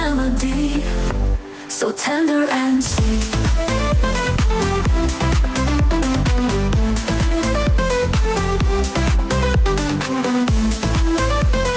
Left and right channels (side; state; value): both; identical; correlation 1.00